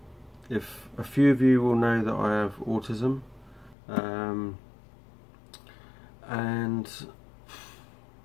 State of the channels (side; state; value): right; drops out; at 3.8 s